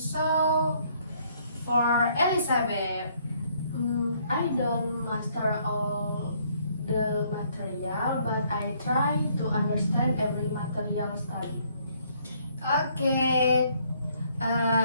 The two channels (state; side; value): inverted; both; correlation -0.66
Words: For Elisabeth, I don't master all the material, but I try to understand every material study. okay.